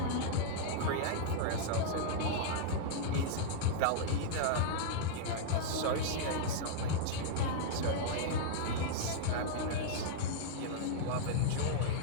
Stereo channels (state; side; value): different; both; correlation -0.01